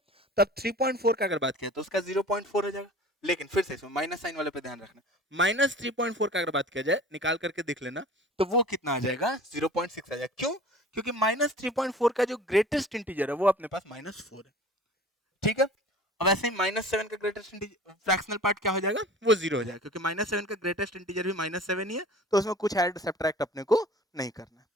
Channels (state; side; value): normal; both; correlation 0.43